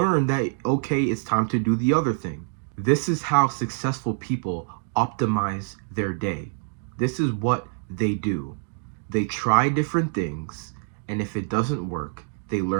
that, okay, it's time to do the other thing. This is how successful people optimize their day. This is what they do. They try different things, and if it doesn't work, they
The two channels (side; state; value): left; silent; digital silence